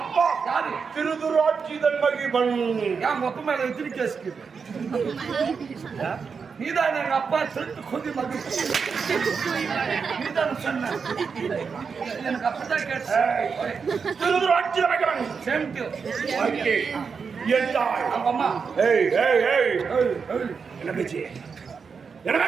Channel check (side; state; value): left; quieter; 5.6 dB